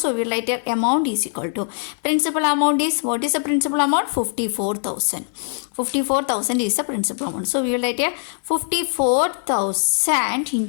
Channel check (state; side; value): silent; right; 57 dB below the other